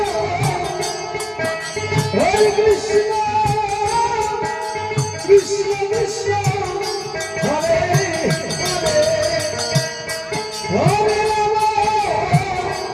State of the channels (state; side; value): identical; both; correlation 1.00